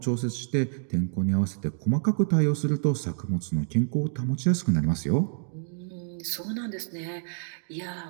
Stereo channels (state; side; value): silent; left; digital silence